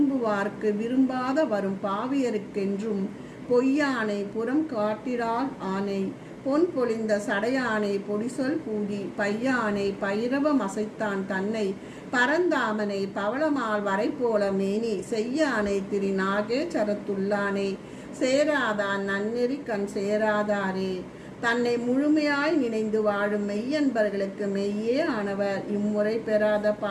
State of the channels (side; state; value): both; identical; correlation 1.00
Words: விரும்பாத வரும் பாவியருக்கென்றும் பொய்யானை புறம் காட்டிறாள் ஆனை பொன் பொழிந்த சடையானை பொடிசொல் பூதி பையானை பைரவம் அசைத்தான் தன்னை பரந்தாமனை பவளமால் வரை போல மேனி செய்யானை திரு நாகேச்சரத்துள்ளானை சேராதான் நன்னெறி கண் சேராதாரே. தன்னை முழுமையாய் நினைந்து வாழும் மெய்யன்பர்களுக்கு மெய்யே ஆனவர், இம்முறை பெறாத